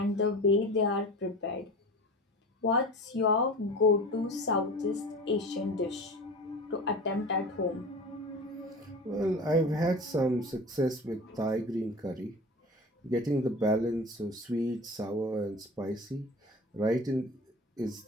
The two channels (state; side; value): normal; both; correlation 0.35